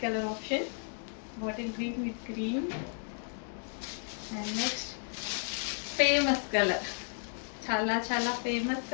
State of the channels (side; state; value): right; silent; 56 dB below the other